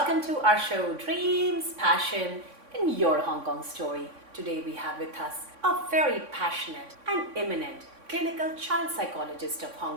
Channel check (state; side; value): late; left; 3.6 ms